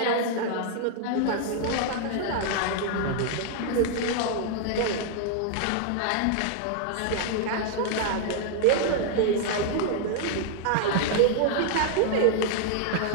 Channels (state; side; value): different; both; correlation 0.00